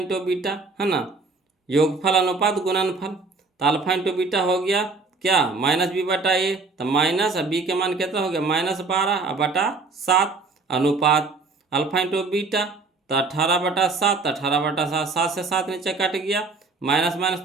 beta, है ना, योगफल अनुपात गुणनफल, तो अल्फा इंटू बीटा हो गया क्या -b बटा ए, तो माइनस, अब बी के मान कितना हो गया -12/7, अनुपात अल्फा इंटू बीटा, तो 18/7, तो 18/7, 7 से 7 नीचे कट गया, माइनस माइनस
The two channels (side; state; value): left; quieter; 4.0 dB